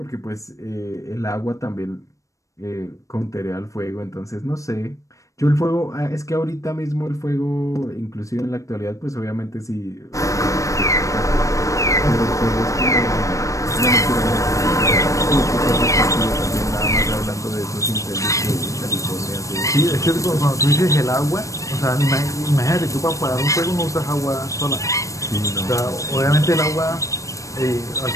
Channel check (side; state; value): right; late; 0.16 ms